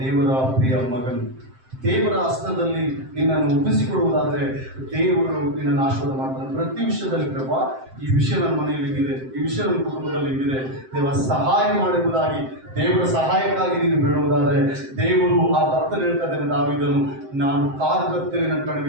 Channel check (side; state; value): left; late; 7.7 ms